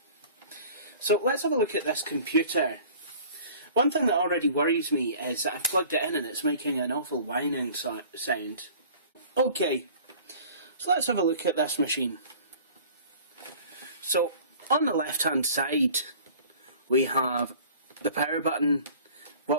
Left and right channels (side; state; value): both; inverted; correlation -0.47